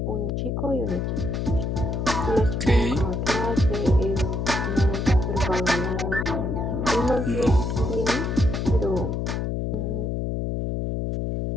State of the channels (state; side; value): noise; left; hum, 2 dB below the sound